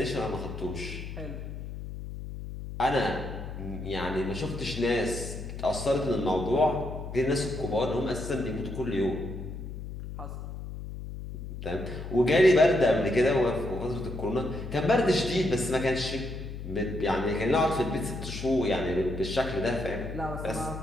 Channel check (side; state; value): left; noise; hum, 9 dB below the sound